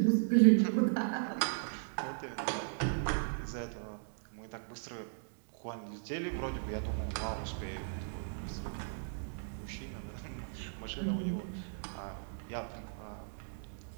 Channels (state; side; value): silent; left; digital silence